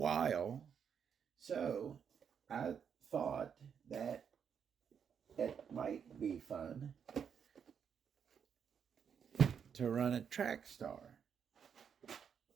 so I thought that it might be fun to run a Trackstar.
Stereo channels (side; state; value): left; quieter; 7.4 dB